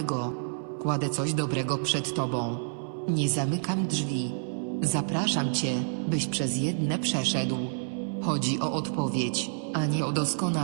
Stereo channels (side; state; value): left; silent; 59 dB below the other